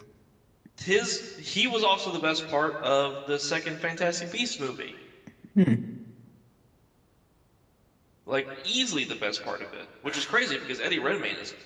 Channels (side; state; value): both; identical; correlation 1.00